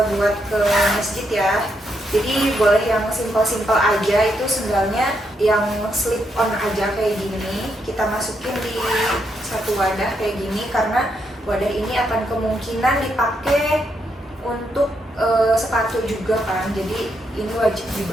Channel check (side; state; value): both; normal; correlation 0.79